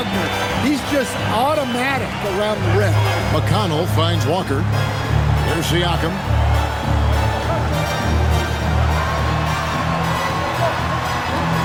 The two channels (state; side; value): identical; both; correlation 1.00